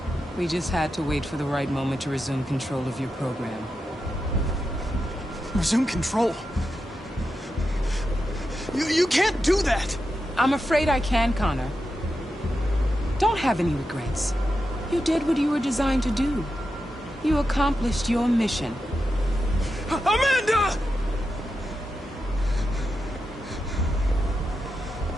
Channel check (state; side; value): normal; both; correlation 0.88